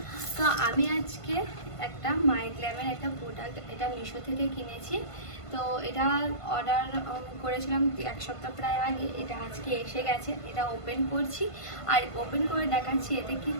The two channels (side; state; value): right; late; 1.5 ms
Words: তো আমি আজকে একটা মাইগ্ল্যামের একটা প্রোডাক্ট এটা মিশো থেকে কিনেছি। তো এটা অর্ডার করেছিলাম এক সপ্তাহ প্রায় আগে, এটা আজকে এসে গেছে। এটা ওপেন করছি আর ওপেন করে দেখাচ্ছি এতে কি